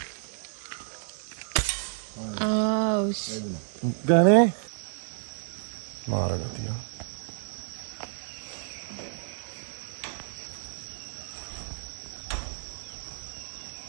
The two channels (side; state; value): left; silent; digital silence